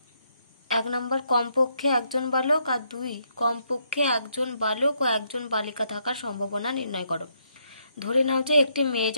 1 নম্বর কমপক্ষে একজন বালক আর 2 কমপক্ষে একজন বালক ও একজন বালিকা থাকার সম্ভাবনা নির্ণয় করো। ধরে নাও যে একটি মেয়ে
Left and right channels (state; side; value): inverted; both; correlation -0.75